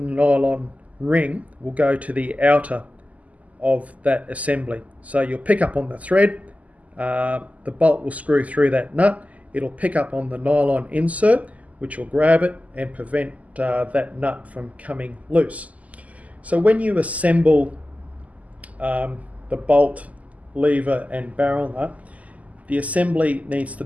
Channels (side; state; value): left; late; 0.073 ms